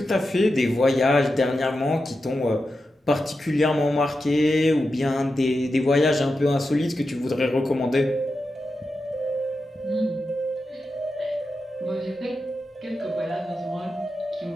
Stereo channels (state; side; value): normal; both; correlation 0.90